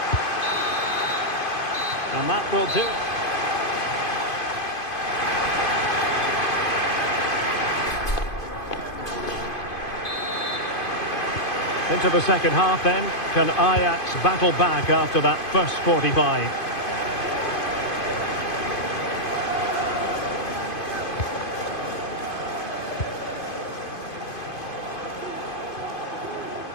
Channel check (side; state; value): right; late; 2.5 ms